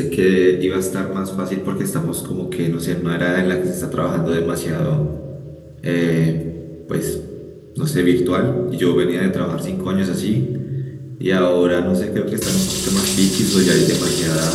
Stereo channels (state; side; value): identical; both; correlation 1.00